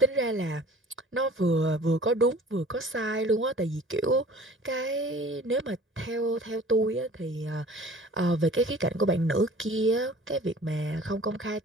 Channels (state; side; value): normal; both; correlation 0.47